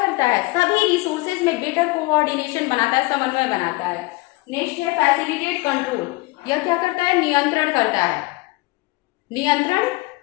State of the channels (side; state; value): right; quieter; 22.9 dB